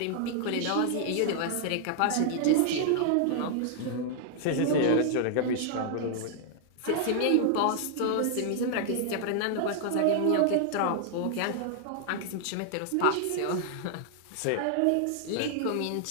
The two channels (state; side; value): different; both; correlation -0.01